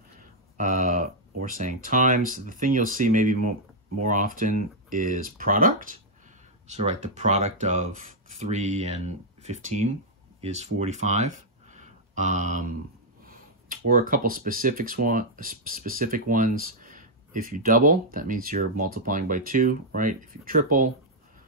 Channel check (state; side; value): normal; both; correlation -0.04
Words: or saying times. The thing you'll see maybe more often is product. So right, the product of 3 and 15 is 45. Or a couple specific ones. If you double, that means you're multiplying by 2, right? If you triple,